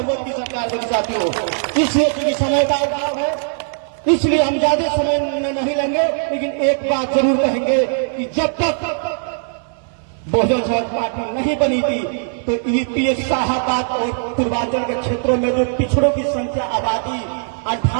की सरकार बनी। साथियों इसलिए क्योंकि समय का अभाव है इसलिए हम ज्यादा समय नहीं लेंगे, लेकिन एक बात जरूर कहेंगे कि जब तक बहुजन समाज पार्टी नहीं बनी थी तो यूपी शाहबाद और पूर्वांचल के क्षेत्रों में जो पिछड़ों की संख्या आबादी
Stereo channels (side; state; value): left; silent; 65 dB below the other